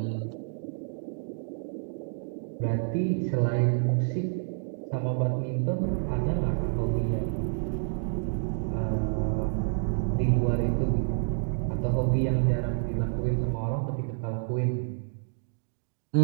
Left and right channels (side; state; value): left; silent; digital silence